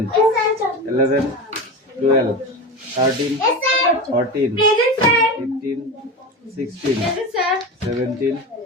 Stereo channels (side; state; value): both; normal; correlation 0.25